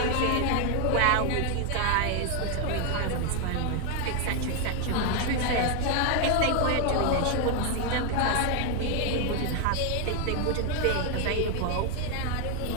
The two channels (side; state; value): both; different; correlation 0.01